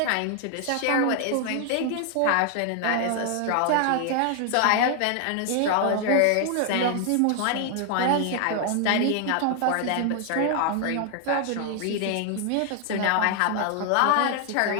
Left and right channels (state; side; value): different; both; correlation 0.00